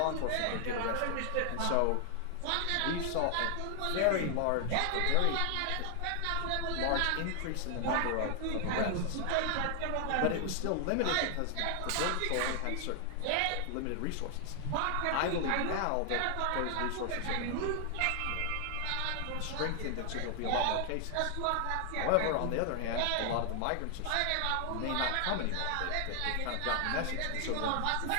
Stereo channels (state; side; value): different; both; correlation 0.00